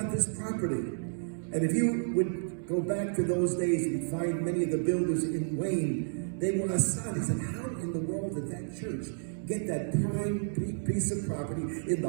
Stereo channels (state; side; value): silent; left; digital silence